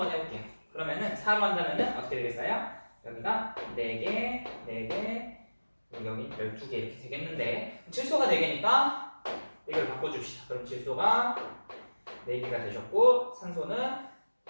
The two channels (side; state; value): both; inverted; correlation -1.00